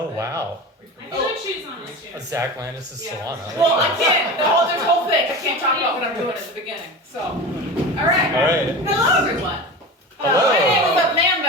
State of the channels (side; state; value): both; normal; correlation 0.30